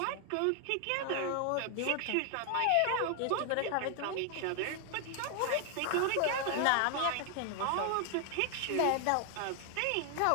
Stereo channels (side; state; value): both; different; correlation 0.00